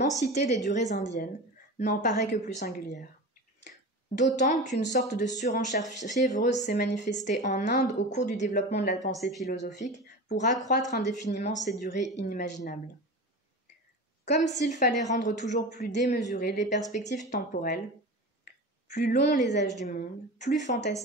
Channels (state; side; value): normal; both; correlation 0.30